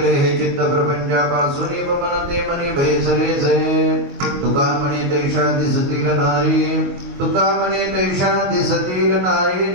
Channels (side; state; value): left; late; 22 ms